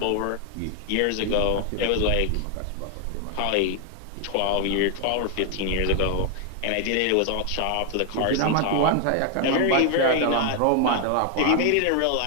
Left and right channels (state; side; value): different; both; correlation 0.00